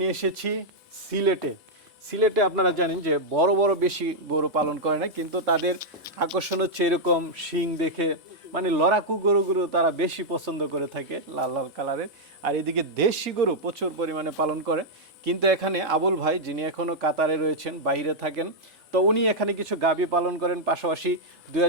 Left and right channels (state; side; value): normal; both; correlation -0.04